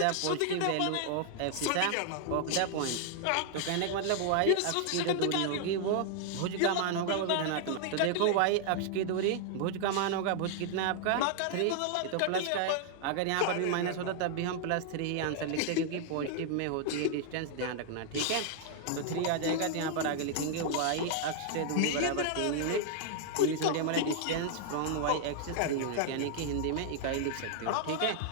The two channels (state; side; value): different; both; correlation 0.00